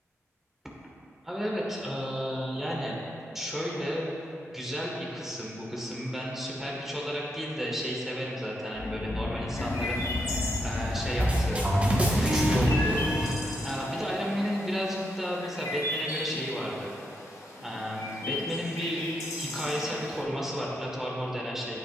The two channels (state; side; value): normal; both; correlation 0.80